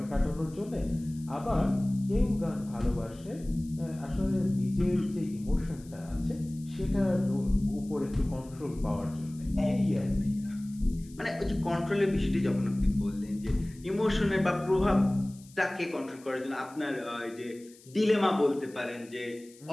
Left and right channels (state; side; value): noise; left; hiss, 24 dB below the sound